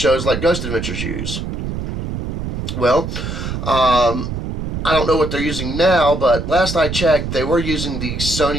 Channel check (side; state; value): right; noise; rumble, 5 dB below the sound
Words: like Ghost Adventures use? Well, I don't know what they're using now, but last I checked, they were using the